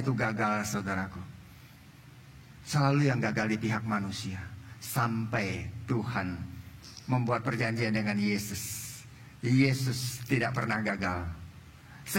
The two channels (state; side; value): identical; both; correlation 1.00